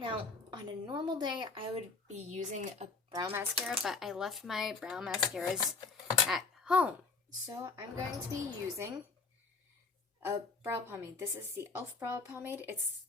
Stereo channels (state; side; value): quieter; right; 4.1 dB